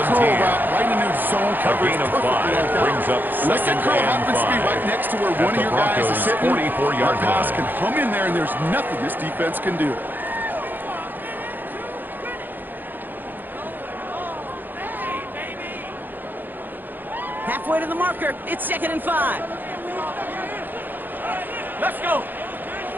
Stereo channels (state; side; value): late; left; 0.088 ms